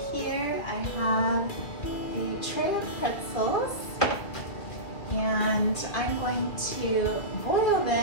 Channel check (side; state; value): right; late; 2.4 ms